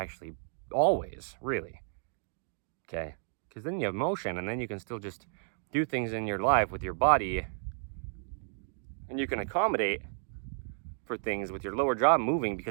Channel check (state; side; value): silent; left; digital silence